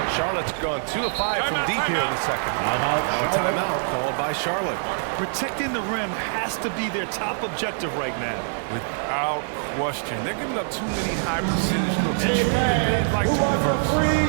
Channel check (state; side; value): silent; left; digital silence